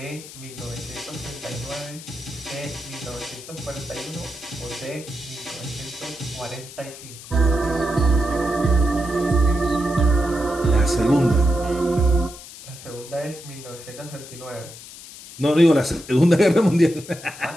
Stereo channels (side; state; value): left; noise; hiss, 15 dB below the sound